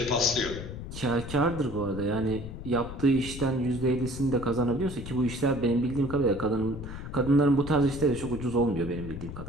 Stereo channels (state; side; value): noise; left; rumble, 9 dB below the sound